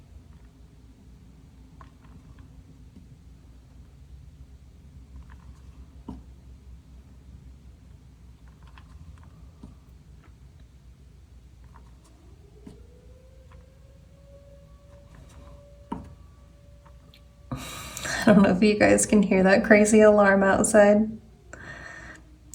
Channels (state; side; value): identical; both; correlation 1.00